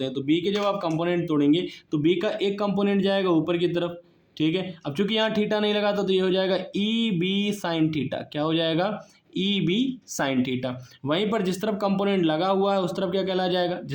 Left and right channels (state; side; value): identical; both; correlation 1.00